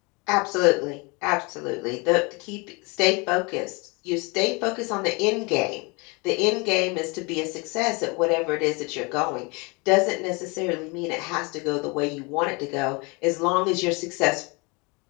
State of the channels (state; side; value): quieter; right; 28.8 dB